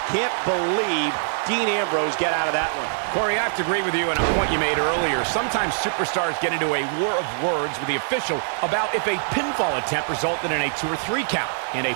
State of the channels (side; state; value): left; silent; digital silence